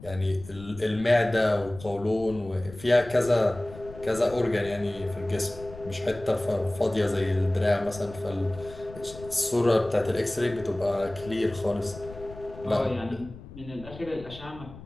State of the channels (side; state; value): left; noise; rumble, 16 dB below the sound